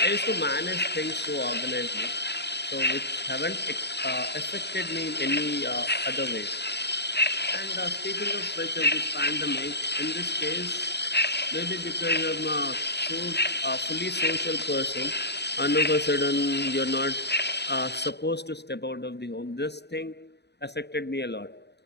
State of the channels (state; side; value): late; right; 0.49 ms